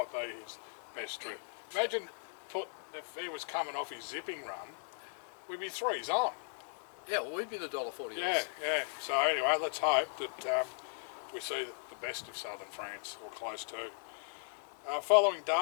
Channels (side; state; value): right; silent; 53 dB below the other